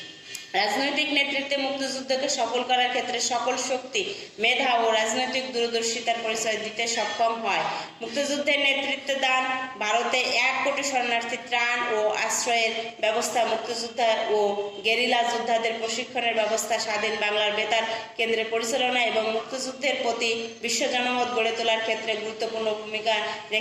রাজনৈতিক নেতৃত্বে মুক্তিযুদ্ধকে সফল করার ক্ষেত্রে সকল শক্তি, মেধা ও রাজনৈতিক দূরদর্শিতার পরিচয় দিতে সক্ষম হয়। মুক্তিযুদ্ধের নেতৃত্ব দান, ভারতে 1 কোটি শরণার্থী ত্রাণ ও আশ্রয়ের ব্যবস্থা, মুক্তিযোদ্ধা ও গেরিলা যোদ্ধাদের প্রশিক্ষণের ব্যবস্থা, স্বাধীন বাংলার বেতার কেন্দ্রের পরিচালনা এবং মুক্তিযুদ্ধের প্রতি বিশ্ব জনমত গড়ে তোলার ক্ষেত্রে গুরুত্বপূর্ণ ভূমিকা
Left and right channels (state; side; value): identical; both; correlation 1.00